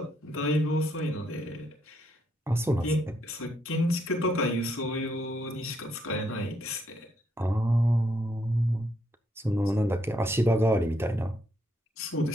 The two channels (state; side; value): normal; both; correlation 0.75